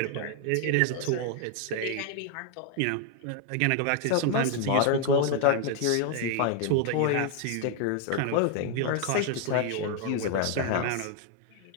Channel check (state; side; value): different; both; correlation 0.00